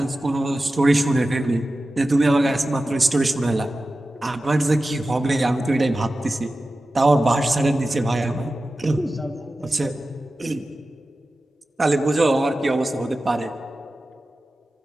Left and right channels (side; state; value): both; normal; correlation 0.94